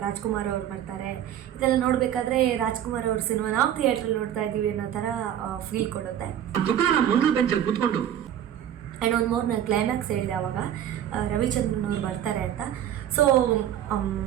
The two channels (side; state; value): left; quieter; 10.6 dB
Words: ರಾಜ್ಕುಮಾರ್ ಅವ್ರು ಬರ್ತಾರೆ. ಇದೆಲ್ಲ ನೋಡಬೇಕಾದ್ರೆ ರಾಜ್ಕುಮಾರ್ ಅವ್ರ ಸಿನಿಮಾ ನಾವು ಥಿಯೇಟ್ರಲ್ಲಿ ನೋಡ್ತಾ ಇದ್ದೀವಿ ಅನ್ನೋ ಥರ ಫೀಲ್ ಕೊಡುತ್ತೆ. ಆ್ಯಂಡ್ ಒಂದು ಮೋರ್ ನಾನು ಕ್ಲೈಮ್ಯಾಕ್ಸ್ ಹೇಳಿದೆ ಆವಾಗ ರವಿಚಂದ್ರನ್ ಅವ್ರು ಬರ್ತಾರೆ ಅಂತ. ಸೊ